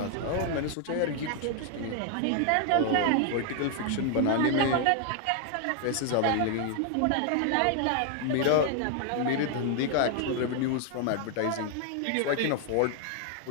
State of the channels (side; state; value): both; different; correlation 0.00